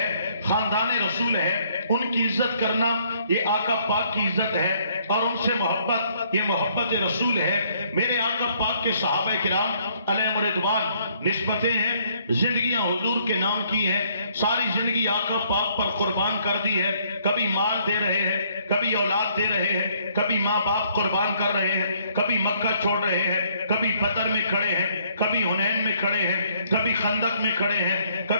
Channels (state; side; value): inverted; both; correlation -0.66